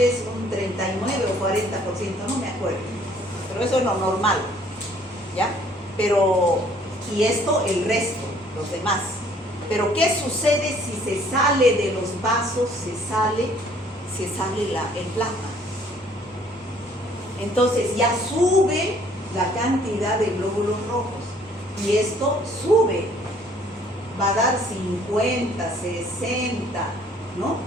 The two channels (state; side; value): normal; both; correlation 0.59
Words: un 39 o 40%, no me acuerdo, pero eso es lo normal, ¿ya? Pero, y esto el resto, los demás. Pero ¿qué sucede si se sale de los vasos, se sale el plasma? Entonces ya sube la cantidad de glóbulos rojos, y esto sube, va a dar 50, 60, ¿no?